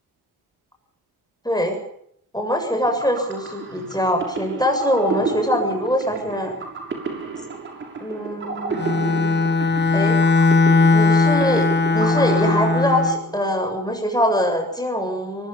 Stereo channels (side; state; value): both; normal; correlation 0.52